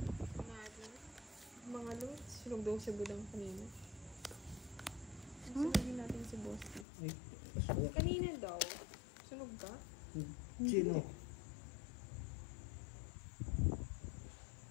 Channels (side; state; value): right; drops out; at 6.9 s